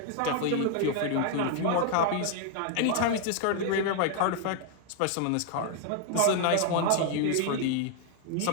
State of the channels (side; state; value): both; different; correlation 0.00